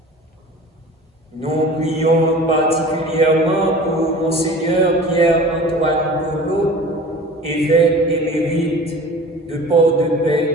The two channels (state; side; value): normal; both; correlation 0.41